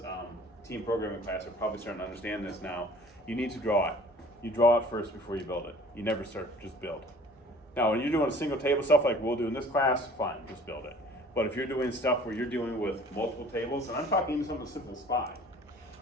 team programming class, are probably starting to understand this now, you need to draw it. You draw it first before you build it. You never start, just build. Now, when you're doing a single table stuff like we'll do in this class, fine, just build it. But if you're doing stuff where you're dealing with multiple tables, and I'm talking even something as simple as 5,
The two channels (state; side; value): normal; both; correlation 0.50